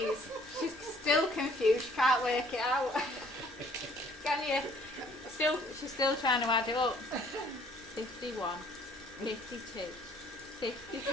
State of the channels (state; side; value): normal; both; correlation 0.59